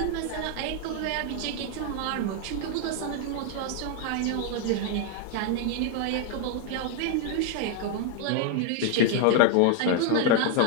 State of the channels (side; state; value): both; different; correlation 0.00